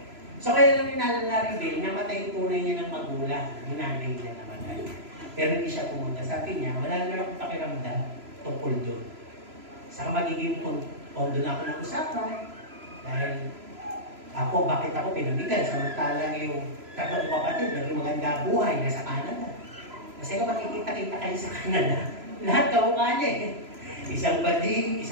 So kaya lang ninalala rin, namatay yung tunay niya ng magulang, yung nanay niya namatay. Pero hindi siya pumunta. Sabi niya, wala naman akong pakiramdam tungkol doon. Saka magiging pondo na ako ng usapan. Dahil ako, bakit ako pinamigan? Samantalang yung tatlong kapatid, naging maganda buhay, nasa Canada. Kasi kung makikita-kita kayo sa Canada, lahat kamukha niya eh. Isang bading,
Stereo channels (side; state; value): left; late; 3.0 ms